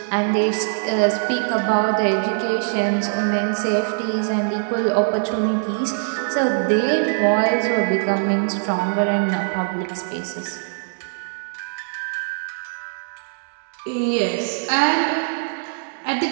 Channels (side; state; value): left; silent; digital silence